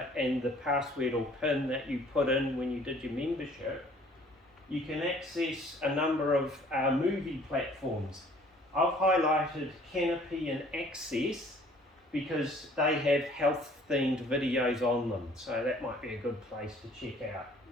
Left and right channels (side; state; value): both; normal; correlation 0.56